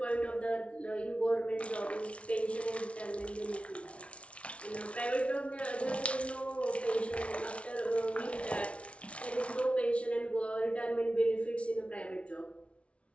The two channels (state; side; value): late; right; 0.061 ms